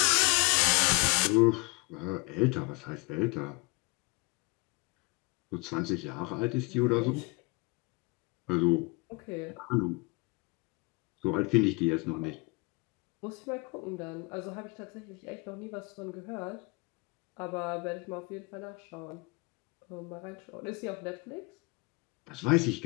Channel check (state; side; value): quieter; right; 28.6 dB